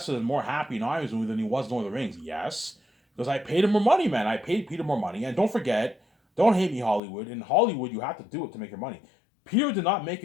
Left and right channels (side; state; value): right; drops out; at 7.0 s